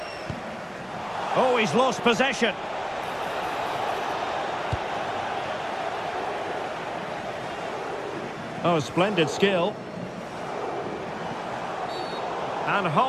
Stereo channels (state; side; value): identical; both; correlation 1.00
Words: Oh, he's lost possession. Oh, splendid skill. And